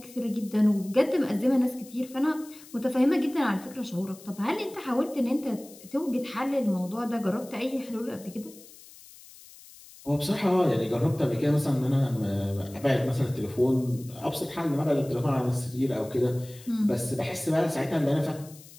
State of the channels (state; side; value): noise; left; hiss, 21 dB below the sound